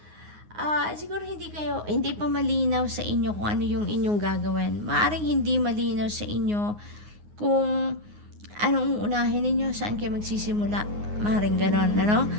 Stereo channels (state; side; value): late; left; 9.6 ms